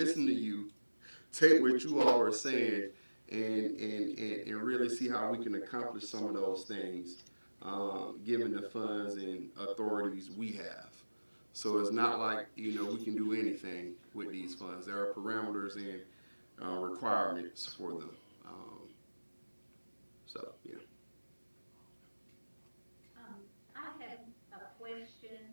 to you, take what you all are saying, and really see how we can accomplish some of those things, given the funds and authorities we have. So it's not like, we can do anything with these funds. There are parameters and requirements for them. So, yeah. I have a question.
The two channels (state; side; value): inverted; both; correlation -1.00